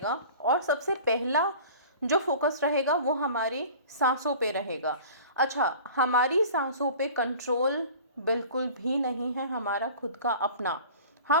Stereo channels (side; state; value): both; inverted; correlation -0.42